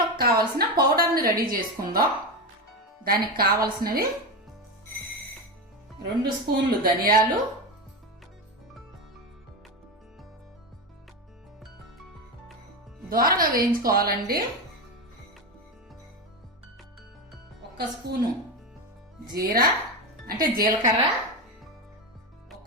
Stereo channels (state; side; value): normal; both; correlation 0.16